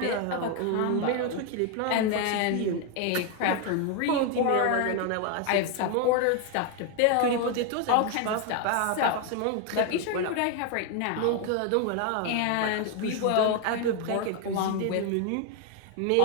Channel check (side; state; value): both; different; correlation 0.01